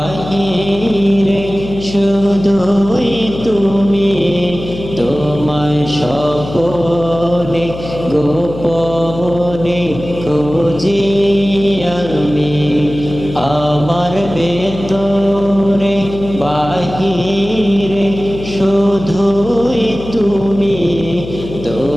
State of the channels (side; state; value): left; noise; hum, 11 dB below the sound